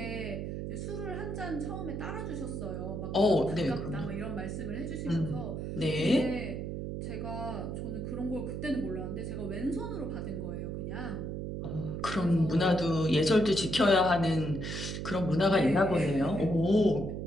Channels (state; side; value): noise; right; hum, 5 dB below the sound